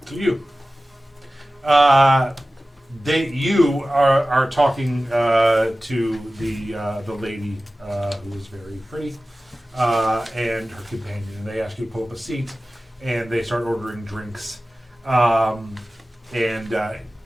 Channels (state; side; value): normal; both; correlation 0.96